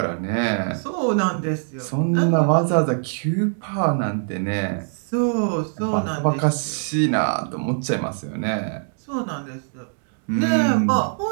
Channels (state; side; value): silent; left; digital silence